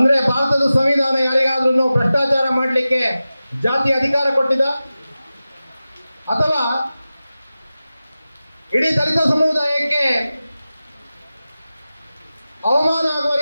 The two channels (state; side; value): inverted; both; correlation -0.95